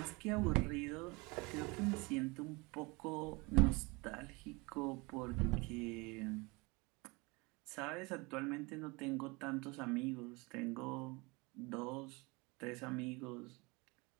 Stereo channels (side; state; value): left; quieter; 26.2 dB